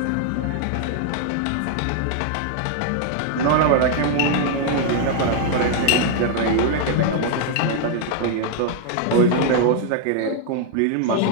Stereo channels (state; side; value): different; both; correlation 0.00